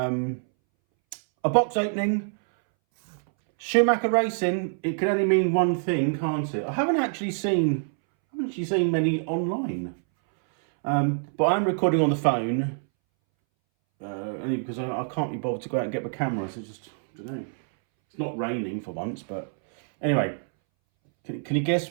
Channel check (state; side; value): silent; left; 61 dB below the other